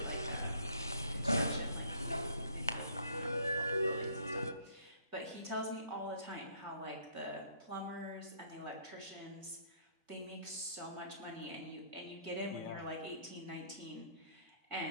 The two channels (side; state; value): both; inverted; correlation -0.62